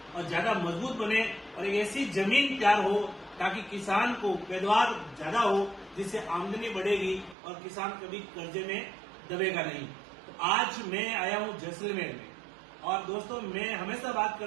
और ज्यादा मजबूत बने और एक ऐसी जमीन तैयार हो ताकि किसान को पैदावार ज्यादा हो, जिससे आमदनी बढ़ेगी और किसान कभी कर्जे में दबेगा नहीं। तो आज मैं आया हूं जैसलमेर में और दोस्तों मैं हमेशा बात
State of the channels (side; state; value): left; drops out; at 7.4 s